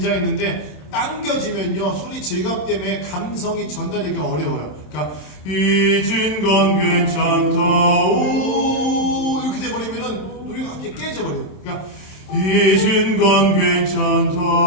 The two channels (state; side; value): late; right; 27 ms